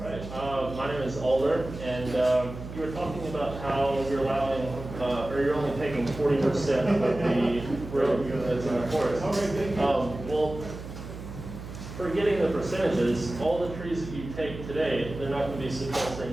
My name is Alder, and you were talking about how you're allowing, or you're only taking 40% of the road that's in the forest. Well, forgetting the percentages, all the trees that you take today, they're not going to be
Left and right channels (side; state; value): right; noise; hum, 11 dB below the sound